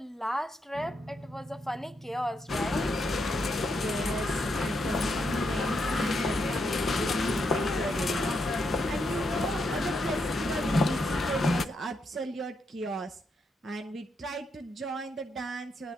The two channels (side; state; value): both; normal; correlation 0.80